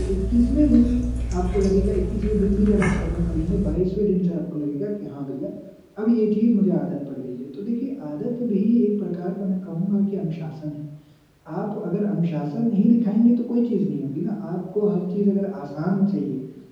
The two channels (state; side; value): identical; both; correlation 1.00